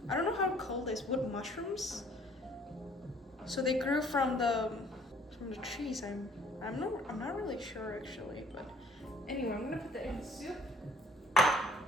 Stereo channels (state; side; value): normal; both; correlation 0.57